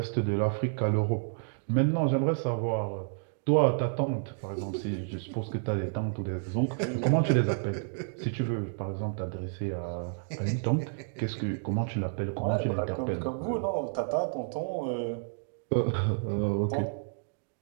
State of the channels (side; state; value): left; silent; digital silence